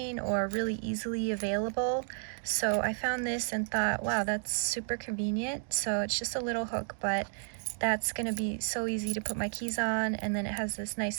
or really easily available. So I found this and thought, wow, that's super convenient. So it's just a little hook, but that's gonna be so easy to put my keys on, and then it has this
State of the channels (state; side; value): silent; left; 56 dB below the other